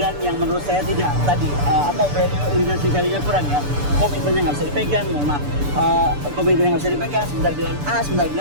yang menurut saya tidak tadi value-nya kurang ya, komitmennya nggak bisa dipegang, komitmennya nggak bisa dipegang, sebentar bilang A, sebentar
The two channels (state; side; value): late; left; 6.9 ms